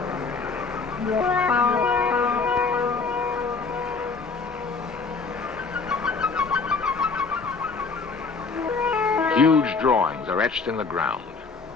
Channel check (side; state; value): right; quieter; 4.5 dB